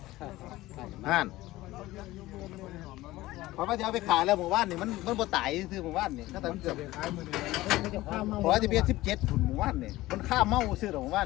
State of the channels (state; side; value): quieter; right; 17.6 dB